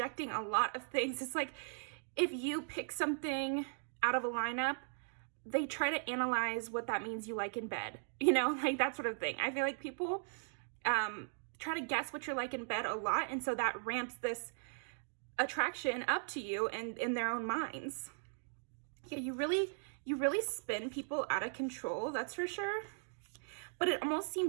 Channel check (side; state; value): left; silent; digital silence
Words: a lot of things. It's like if you pick something out of a lineup, they try to analyze what that means you like in bed, you know, like that sort of thing. I feel like people try to guess what you're like in bed a lot, and so that ramps this attraction up to you and in their own minds. Yeah, you really spin people out of control, that's for sure. But it almost